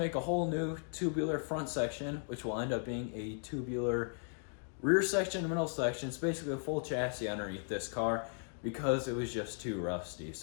a whole new tubular front section, which will end up being a tubular rear section and middle section. It's basically a full chassis underneath this car because it was just too rusty.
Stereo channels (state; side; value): silent; right; 53 dB below the other